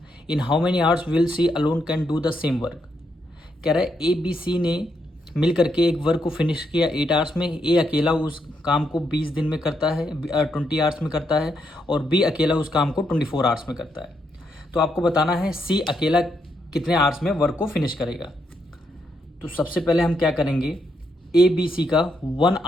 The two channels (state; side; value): normal; both; correlation 0.79